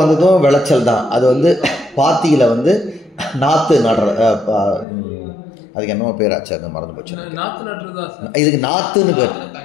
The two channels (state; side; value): drops out; right; at 4.9 s